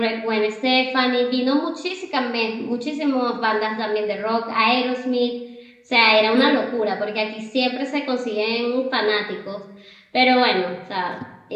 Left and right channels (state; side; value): identical; both; correlation 1.00